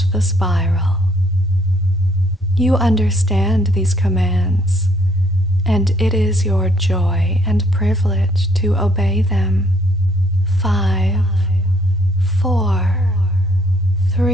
the spiral. You understand these commands, and it is your joy and privilege to obey them. 5, 4,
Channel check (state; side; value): normal; both; correlation 0.65